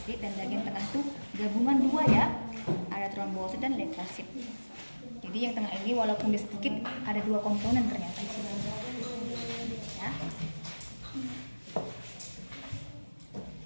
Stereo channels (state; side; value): inverted; both; correlation -1.00